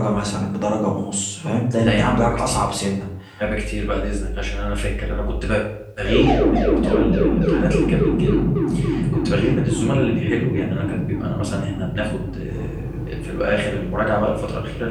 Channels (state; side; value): identical; both; correlation 1.00